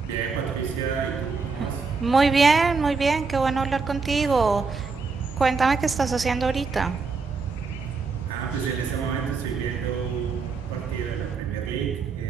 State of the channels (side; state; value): left; quieter; 4.6 dB